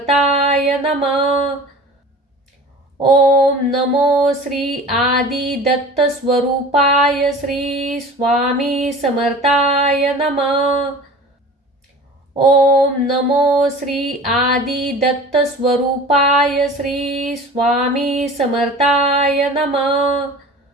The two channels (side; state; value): both; normal; correlation 0.40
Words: नमः। ओम नमो श्री आदि दत्त स्वरूपाय श्री स्वामी समर्थाय नमः। ओम नमो श्री आदि दत्त स्वरूपाय श्री स्वामी समर्थाय नमः।